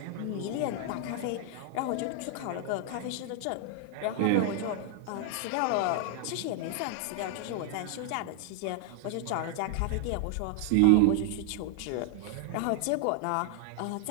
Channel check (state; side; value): different; both; correlation 0.00